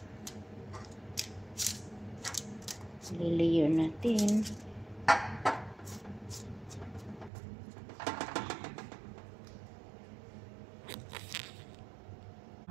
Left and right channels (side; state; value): left; drops out; at 7.3 s